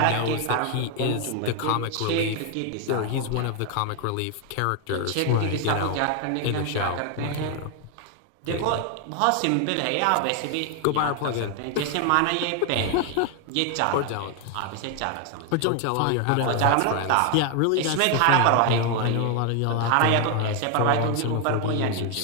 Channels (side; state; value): both; different; correlation 0.00